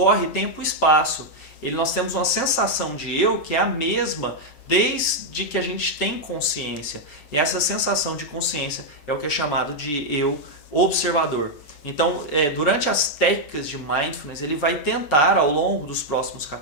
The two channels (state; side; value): late; right; 6.8 ms